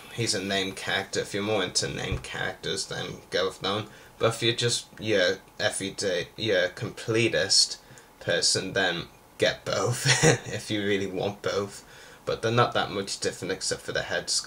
he's a named character. If you're more into named characters, then go with that one. But if you're just your everyday, your completist person, then get both if you really want both. But they're not that much different except for the head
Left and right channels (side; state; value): both; identical; correlation 1.00